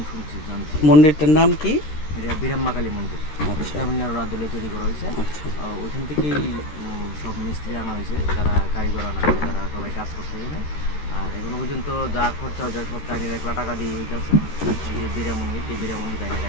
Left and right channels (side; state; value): right; late; 13 ms